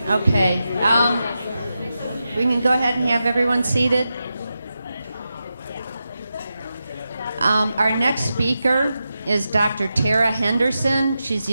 Okay. We can go ahead and have everyone seated. Our next speaker is Dr. Tara Henderson. She's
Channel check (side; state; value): both; inverted; correlation -0.90